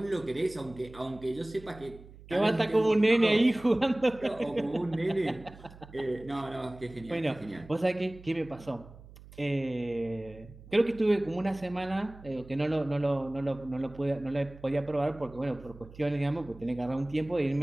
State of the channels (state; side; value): noise; right; hum, 19 dB below the sound